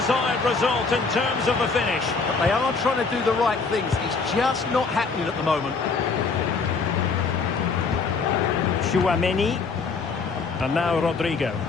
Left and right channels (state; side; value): quieter; right; 4.6 dB